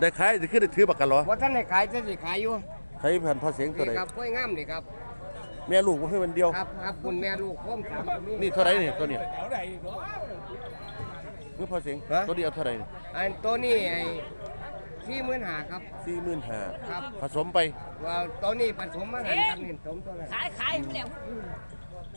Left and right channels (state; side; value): inverted; both; correlation -1.00